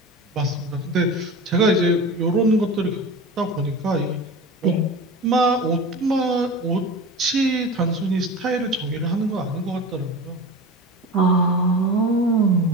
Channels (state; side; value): normal; both; correlation 0.31